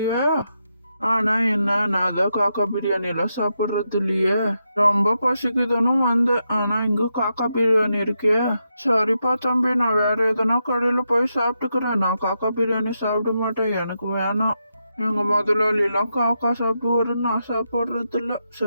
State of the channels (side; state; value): both; inverted; correlation -0.84